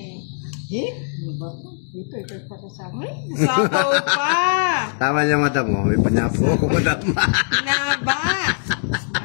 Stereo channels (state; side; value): silent; right; digital silence